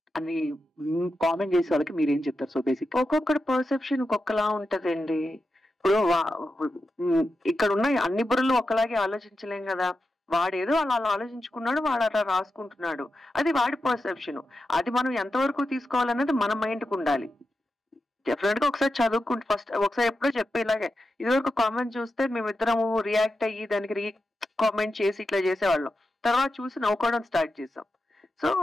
అని కామెంట్ చేసే వాళ్ళకి మీరు ఏం చెప్తారు? సో బేసిక్ ఒక్కొక్కటి పర్సెప్షన్ ఒక్కొక్కలా ఉంటదండి. ఇప్పుడు ఇక్కడ ఉన్న అన్ని బుర్రలు ఒకలాగే ఆలోచించలేం కదా. వాడేదో అలా ఆలోచించుకున్నాడు, వాడు అలా రాసుకుంటున్నాడు, అది వాడి పర్సెప్షన్. అది మనం ఎంతవరకు తీసుకోవాలన్నది మన మైండ్కి ఉండాలి. డెఫినెట్ గా ఒకసారి చదువుకుంటే ఫస్ట్ ఒకసారి ఎప్పుడో చెప్పే ఇలాగే ఇదివరకు కామెంట్ చూస్తే మేమిద్దరము రియాక్ట్ అయ్యి దానికి కామెంట్ చేసి ఇట్లా చేసేవాళ్ళం. తర్వాత చూసి నవ్వుకోవడం స్టార్ట్ చేసాం. సో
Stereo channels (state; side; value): normal; both; correlation 0.89